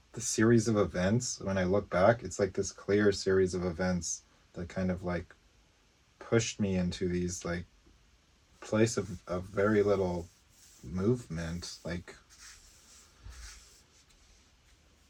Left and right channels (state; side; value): identical; both; correlation 1.00